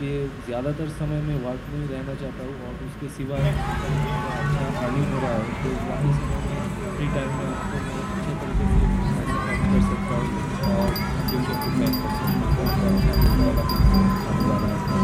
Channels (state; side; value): identical; both; correlation 1.00